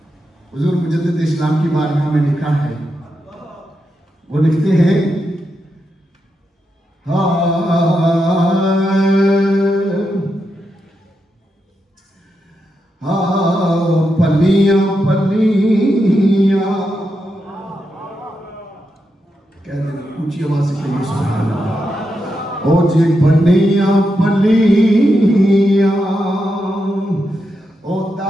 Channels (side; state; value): both; normal; correlation 0.85